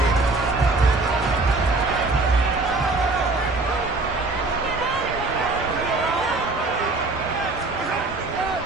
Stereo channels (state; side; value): quieter; left; 3.3 dB